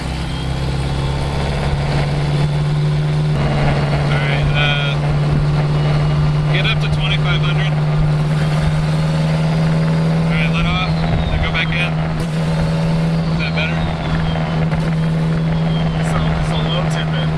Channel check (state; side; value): identical; both; correlation 1.00